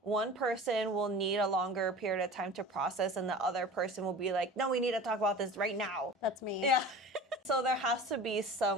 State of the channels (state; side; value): normal; both; correlation 0.38